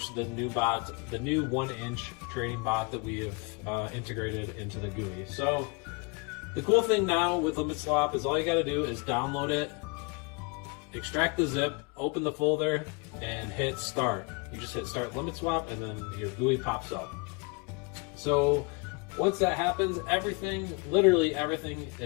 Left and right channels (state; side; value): quieter; right; 31.3 dB